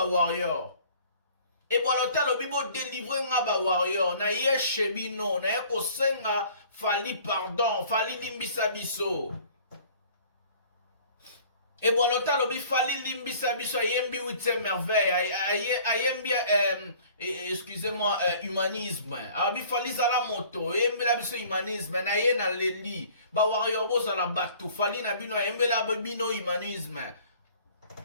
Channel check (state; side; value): inverted; both; correlation -0.51